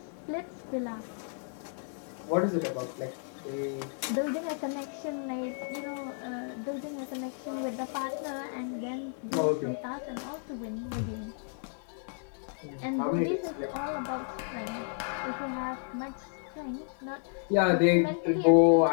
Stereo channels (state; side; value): silent; right; 56 dB below the other